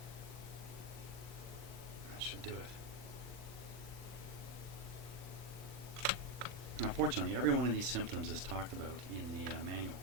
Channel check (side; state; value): left; late; 40 ms